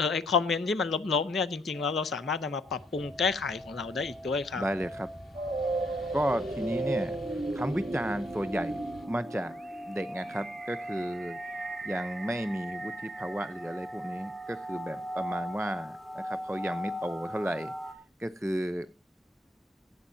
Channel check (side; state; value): both; normal; correlation 0.74